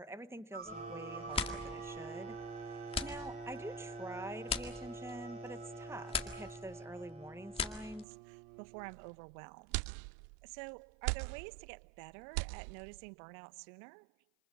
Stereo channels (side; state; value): left; drops out; at 8.1 s